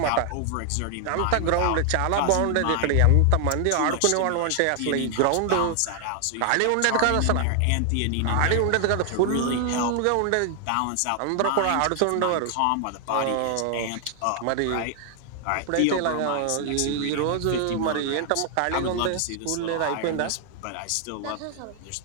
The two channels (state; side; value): different; both; correlation 0.00